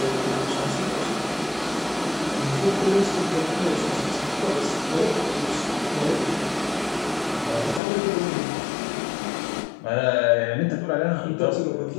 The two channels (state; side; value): drops out; right; at 7.8 s